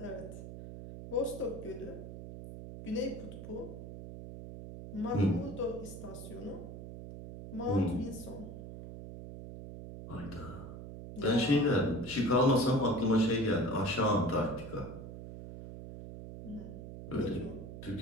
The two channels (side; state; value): right; noise; hum, 11 dB below the sound